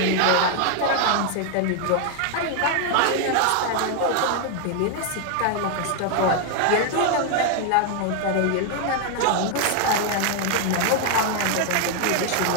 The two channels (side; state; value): both; different; correlation 0.00